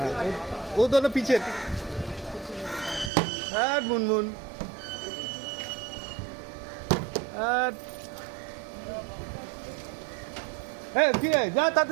ও दोनों पीछे মুনমুন কি রে যা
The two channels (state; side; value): drops out; left; at 3.1 s